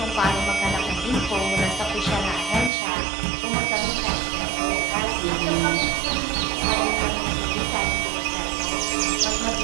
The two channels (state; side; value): drops out; left; at 2.7 s